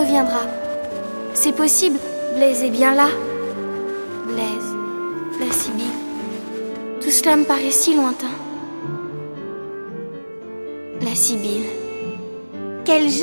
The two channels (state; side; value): inverted; both; correlation -1.00